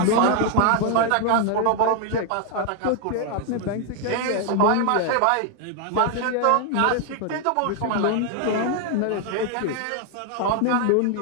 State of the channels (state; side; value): different; both; correlation 0.01